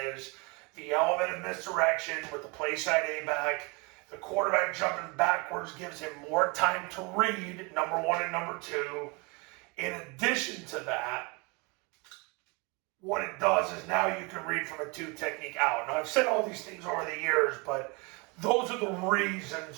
the element of misdirection with the play side A-back. The quarterback jumping backwards gives him more time to read, number one and number two. In addition to that, what it does is now you can read from a two technique out. Now, I've said all these things over the years, but those are the reasons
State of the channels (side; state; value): left; quieter; 29.3 dB